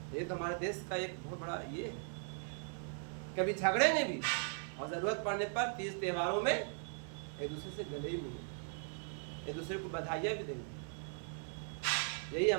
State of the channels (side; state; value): left; silent; digital silence